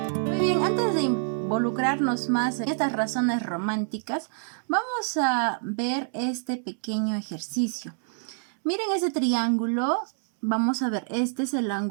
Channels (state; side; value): silent; left; digital silence